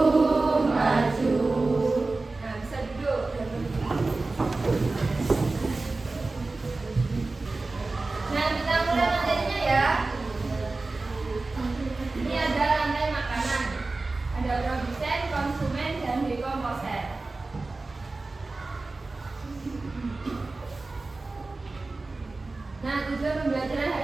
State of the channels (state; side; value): quieter; left; 3.4 dB